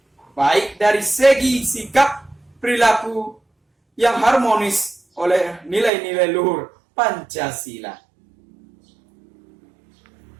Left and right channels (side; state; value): left; drops out; at 5.9 s